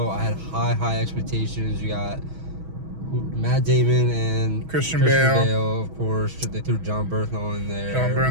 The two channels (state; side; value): late; left; 6.2 ms